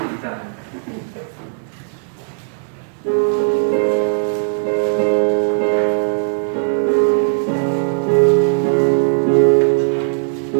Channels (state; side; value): silent; left; 59 dB below the other